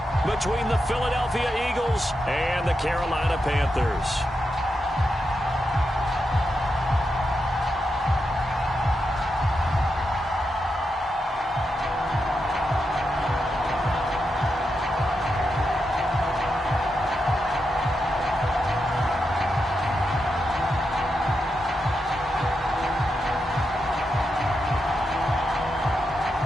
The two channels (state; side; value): normal; both; correlation 0.86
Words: between the Philadelphia Eagles and the Carolina Panthers.